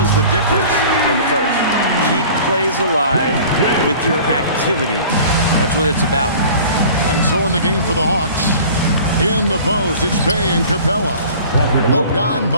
the difference in the first. Keep plays alive with your activity. That's what it's about. And so in the game for the Hawks, in the post, it's Bay and Capella.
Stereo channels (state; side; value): inverted; both; correlation -0.44